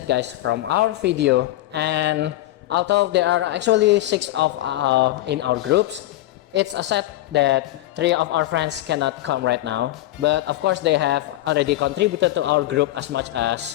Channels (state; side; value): quieter; right; 15.8 dB